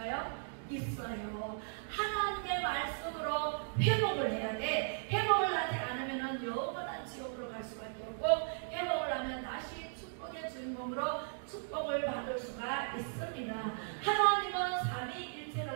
있어요. 하나님의 말씀으로 회복을 해야 돼. 회복을 하지 않으면 영원한 지옥으로 갈 수밖에 없고, 회복을 하면 다시 축복의 주인공으로 축복을 받을 수가 있습니다. 하나님은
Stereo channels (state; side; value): silent; left; digital silence